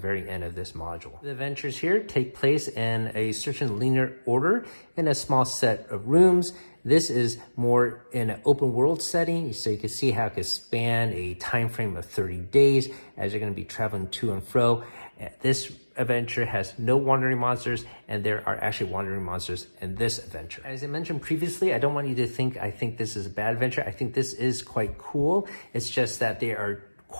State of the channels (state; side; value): inverted; both; correlation -1.00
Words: end of this module. The adventures here take place in a certain linear order in a small set of rooms. This is more in an open world setting, so you can see how it can span a time frame of 30 days as you're going to be traveling to and fro. This adventure has no wandering monsters, and there are actually wandering monsters in this adventure. As I mentioned previously, I don't want you to think I think this is a bad adventure. I think this is quite cool. It's just that they are